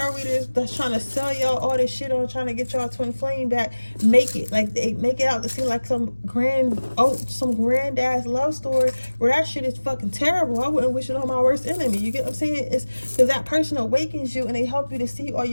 readers that's trying to sell y'all all this shit on, trying to get y'all twin flame back. Make it like they make it out to seem like some grand ass love story where that shit is fucking terrible. I wouldn't wish it on my worst enemy. You get what I'm saying? It's because that person awakens you and they help you to see all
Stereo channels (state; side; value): inverted; both; correlation -1.00